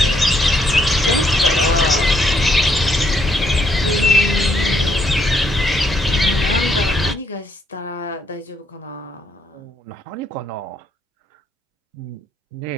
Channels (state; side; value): normal; both; correlation 0.72